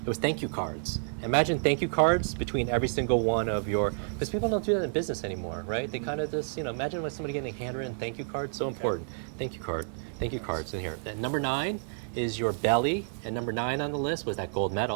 it was thank you cards. Imagine thank you cards between every single one of your, because people don't do that in business anymore, right? They kind of just, imagine when somebody getting a handwritten thank you card, so important. Thank you card. Thank you cards in here. And number 9 is your belly, and number 9 on the list was that gold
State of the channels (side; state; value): left; silent; 58 dB below the other